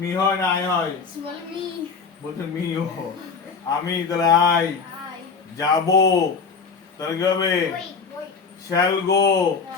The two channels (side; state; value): right; quieter; 5.3 dB